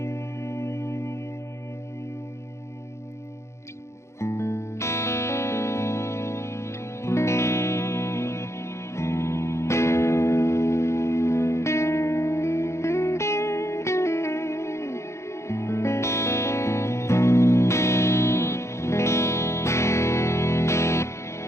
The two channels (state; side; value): late; right; 0.14 ms